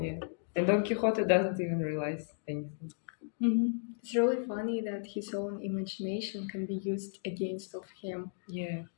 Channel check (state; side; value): silent; right; digital silence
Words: Yeah, and Don Quixote doesn't even realize anything. It's really funny that his own imagination can be used against of him. Yeah.